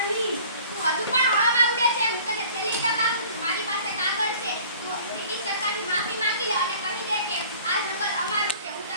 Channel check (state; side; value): inverted; both; correlation -0.49